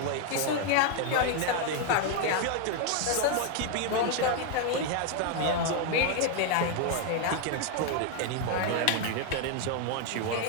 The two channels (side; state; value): both; different; correlation 0.01